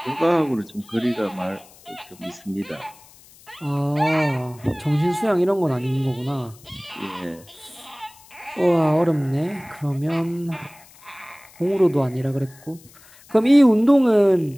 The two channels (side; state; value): left; noise; hiss, 25 dB below the sound